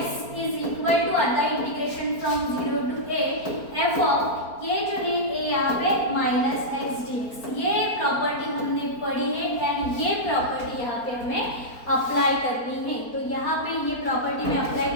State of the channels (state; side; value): late; right; 4.3 ms